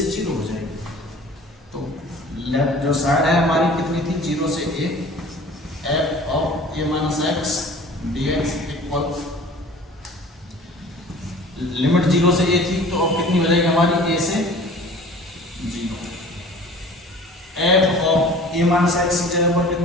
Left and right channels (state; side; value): normal; both; correlation 0.45